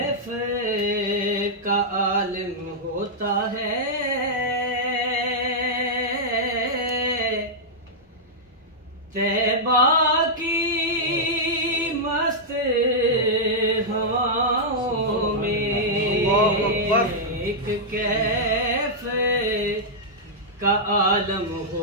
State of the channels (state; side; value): normal; both; correlation -0.08